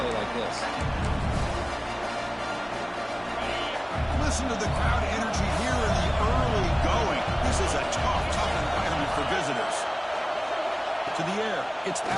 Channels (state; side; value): identical; both; correlation 1.00